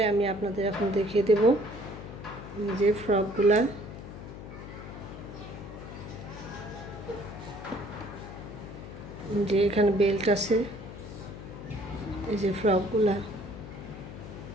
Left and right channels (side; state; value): left; noise; hum, 12 dB below the sound